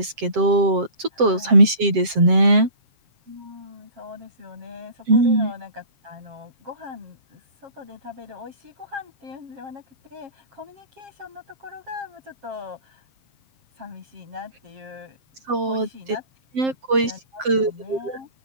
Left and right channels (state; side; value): late; left; 7.6 ms